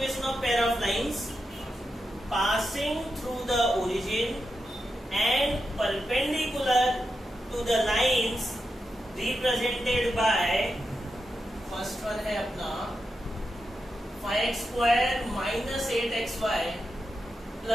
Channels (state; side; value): normal; both; correlation 0.88